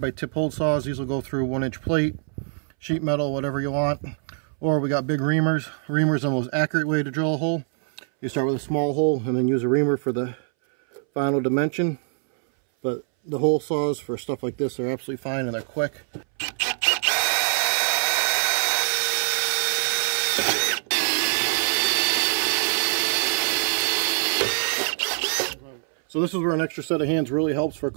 tip hold saws. These will go through 1-inch plate, sheet metal, whatever you want. Or we got big reamers. Reamers are the most accurate way to drill a hole. You start with a small hole and then use a reamer for the final dimension. But the hole saws for stuff like this are absolutely fine and they're quick. So this is where an extra set of hands really helps for a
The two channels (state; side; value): silent; left; 63 dB below the other